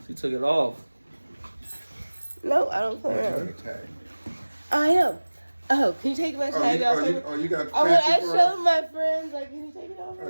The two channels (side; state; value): both; inverted; correlation -1.00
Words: She took it off. No, I don't play Oh, you around. got a tag. I am. Oh, can you take my tag off? You got I fancy for us? showed my friends, like, can you take it off? Oh,